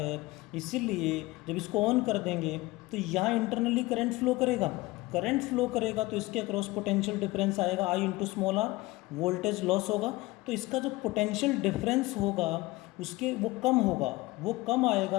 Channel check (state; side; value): quieter; right; 20.6 dB